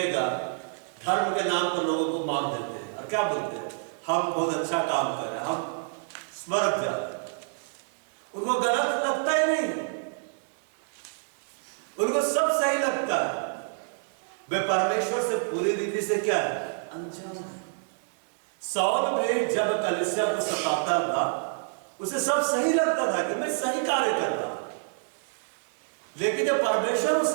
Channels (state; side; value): silent; left; digital silence